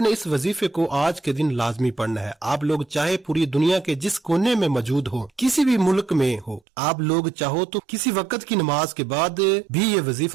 نے اس وظیفے کو آج کے دن لازمی پڑھنا ہے۔ آپ لوگ چاہے پوری دنیا کے جس کونے میں موجود ہو، کسی بھی ملک میں ہو، آپ لوگ چاہو تو کسی وقت کی نماز کے بعد بھی یہ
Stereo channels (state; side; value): drops out; left; at 6.6 s